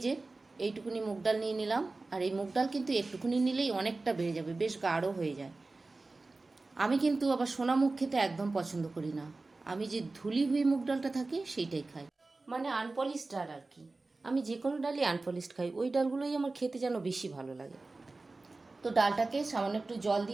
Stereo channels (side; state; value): left; quieter; 3.4 dB